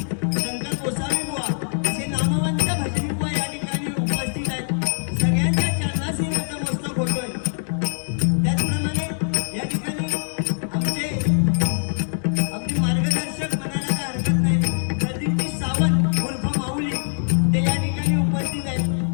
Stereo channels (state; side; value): silent; right; digital silence